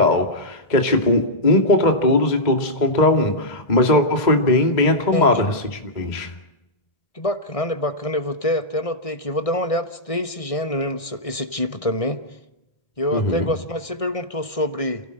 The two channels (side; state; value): right; late; 1.6 ms